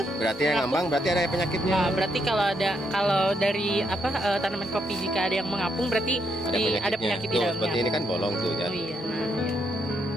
Berarti yang ngambang berarti ada penyakitnya. Berarti kalau dari tanaman kopi jika ada yang mengapung berarti ada penyakit di dalamnya. Seperti ini kan bolong tuh ya. Oh iya, nah ya.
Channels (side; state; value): both; normal; correlation 0.78